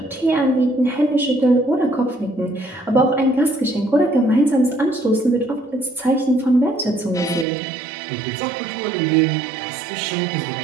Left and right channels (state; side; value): drops out; left; at 7.5 s